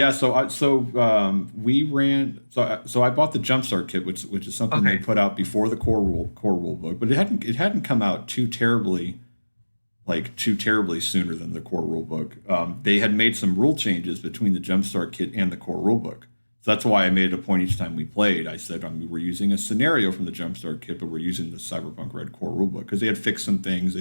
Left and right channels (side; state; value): both; inverted; correlation -1.00